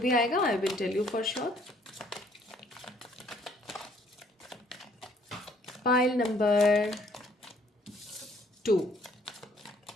आएगा I will tell you for sure. Pile number 2,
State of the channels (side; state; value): both; normal; correlation 0.63